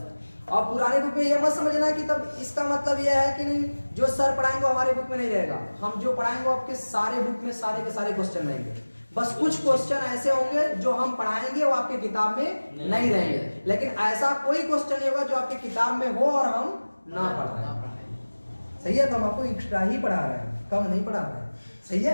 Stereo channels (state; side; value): inverted; both; correlation -1.00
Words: और पुरानी बुक में ये मत समझना कि तब इसका मतलब ये है कि नहीं जो सर पढ़ाएंगे हमारे बुक में नहीं रहेगा। हम जो पढ़ाएंगे आपके सारे बुक में सारे के सारे क्वेश्चन रहेंगे, बस कुछ क्वेश्चन ऐसे होंगे जो हम पढ़ाएंगे वो आपके किताब में नहीं रहेंगे। लेकिन ऐसा कोई क्वेश्चन नहीं होगा जो आपके किताब में हो और हम ना पढ़ाएं, सही है। तो हम आपको एक्स्ट्रा ही पढ़ा रहे हैं, कम नहीं पढ़ा रहे हैं, सही